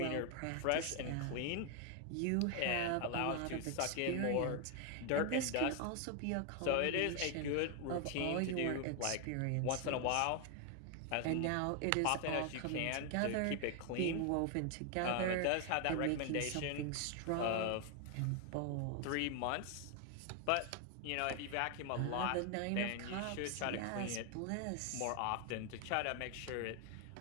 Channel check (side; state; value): both; different; correlation 0.01